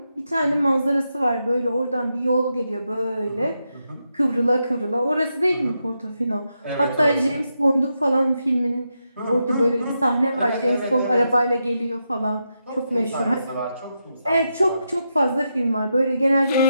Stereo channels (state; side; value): inverted; both; correlation -0.85